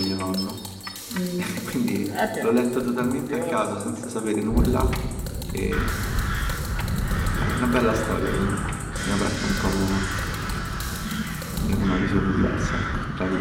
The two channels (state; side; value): identical; both; correlation 1.00